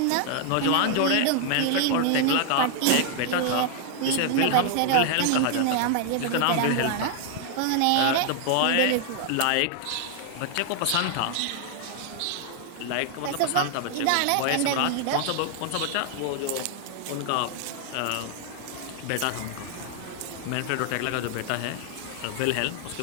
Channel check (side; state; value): both; different; correlation 0.00